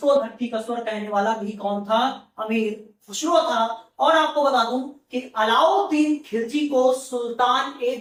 धरती का स्वर्ग कहने वाला भी कौन था, अमीर खुसरो था। और आपको बता दूं कि अलाउद्दीन खिलजी को सुल्तान ए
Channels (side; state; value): both; identical; correlation 1.00